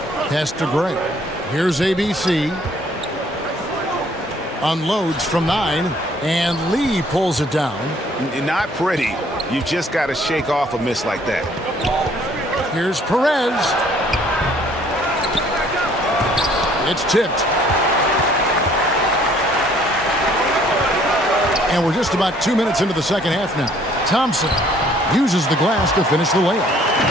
Pass to Gray. Here's ABC. Unloads from 9. And Lee pulls it down. Not pretty. You just got to shake off a miss like that. Here's Perez. It's tipped. And we're just about 2 minutes into the second half now. Thompson uses the glass to finish the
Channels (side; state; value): both; normal; correlation 0.60